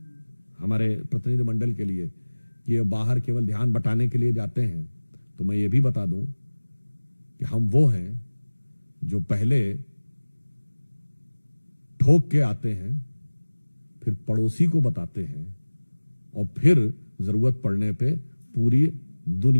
हमारे प्रतिनिधि मंडल के लिए कि ये बाहर केवल ध्यान बटाने के लिए जाते हैं। तो मैं ये भी बता दूं कि हम वो हैं जो पहले ठोक के आते हैं, फिर पड़ोसी को बताते हैं और फिर जरूरत पड़ने पे पूरी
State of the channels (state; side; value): inverted; both; correlation -1.00